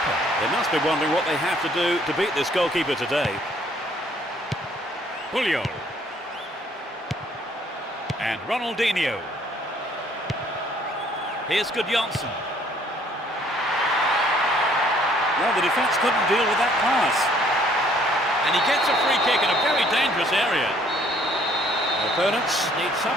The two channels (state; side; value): normal; both; correlation 0.61